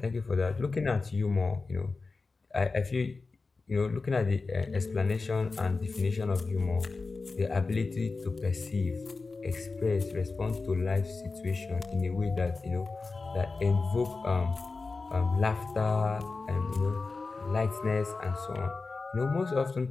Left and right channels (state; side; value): quieter; right; 4.0 dB